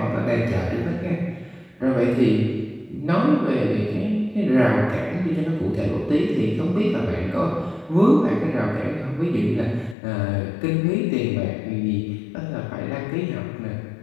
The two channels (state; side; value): drops out; right; at 10.0 s